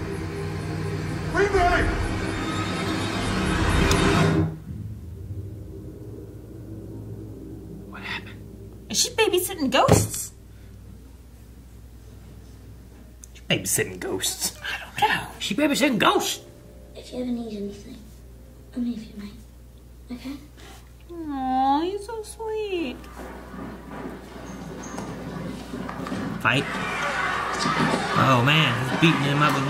What happened? Is she babysitting ghosts? She's babysitting ghosts. I don't know. She babysitting ghosts. If you ever need anything, I'm here for you, mate. Okay? Aw, he's so sweet. Fight. Oh man, he's beating him up with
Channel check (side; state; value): both; identical; correlation 1.00